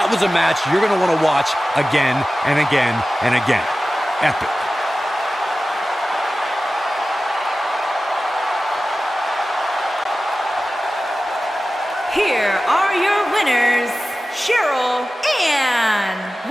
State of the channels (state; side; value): normal; both; correlation 0.95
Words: was a match you're going to want to watch again and again and again. Epic. Here are your winners, Cheryl and